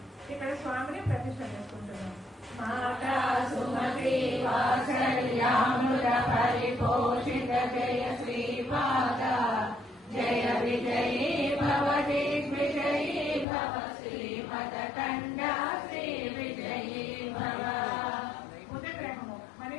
ఇక్కడ స్వామిని ప్రతిష్ఠ చేసుకుంటున్నాం. మాతా సుమతి వాత్సల్యామృత పరిపోషిత జయ శ్రీపాద జయ విజయీ భవ దిగ్విజయీ భవ శ్రీమదకండ శ్రీ విజయీ భవ. బుధగ్రహము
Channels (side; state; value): right; drops out; at 13.5 s